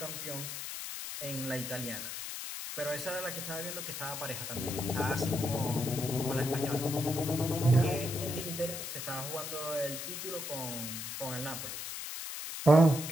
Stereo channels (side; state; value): left; noise; hiss, 6 dB below the sound